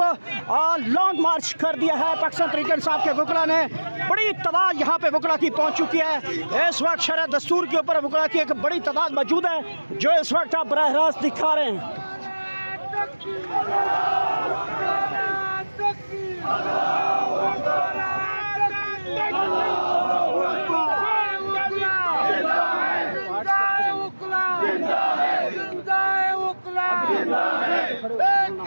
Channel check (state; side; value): inverted; both; correlation -1.00